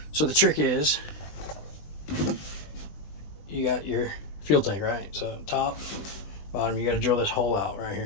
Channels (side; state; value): right; late; 20 ms